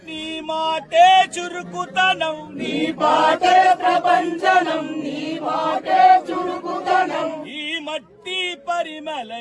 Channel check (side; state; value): both; identical; correlation 1.00